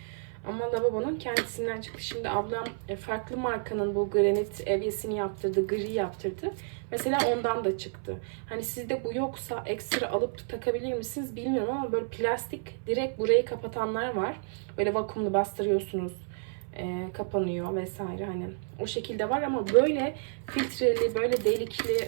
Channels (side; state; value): left; silent; 55 dB below the other